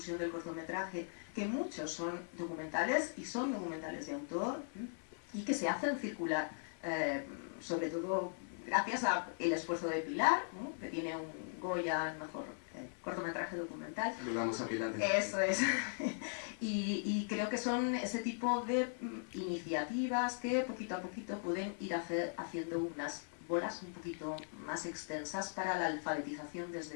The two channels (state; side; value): silent; right; 52 dB below the other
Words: del cortometraje, que muchos son documentales y son documentales de autor y que se hacen circular, sobre todo gracias al esfuerzo de Pilar, que tiene un Goya, el mejor cortometraje documental. Vamos a Pilar. Eso es. Y creo que son ese tipo de iniciativas que poquito a poquito pueden ir haciendo unas bolas un poquito más extensas para la alfabetización